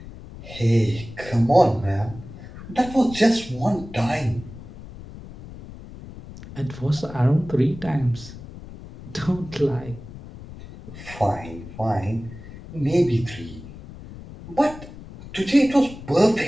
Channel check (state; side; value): noise; left; rumble, 15 dB below the sound